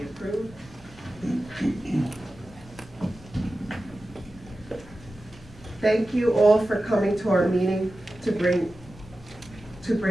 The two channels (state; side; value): normal; both; correlation 0.94